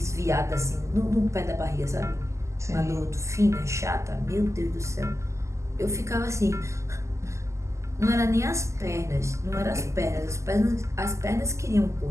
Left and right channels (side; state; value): left; late; 0.14 ms